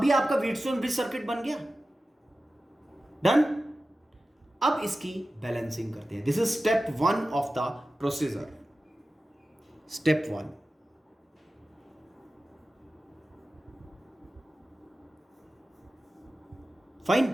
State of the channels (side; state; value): both; normal; correlation 0.94